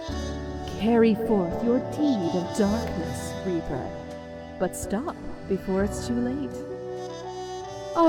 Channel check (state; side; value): identical; both; correlation 1.00